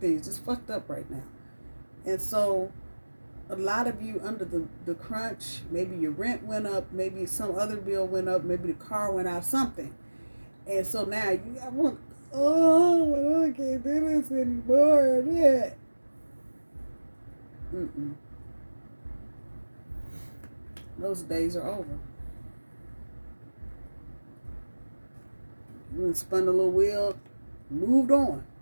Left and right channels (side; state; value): both; inverted; correlation -1.00